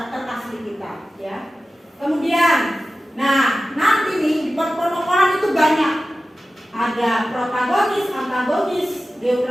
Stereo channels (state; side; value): normal; both; correlation 0.95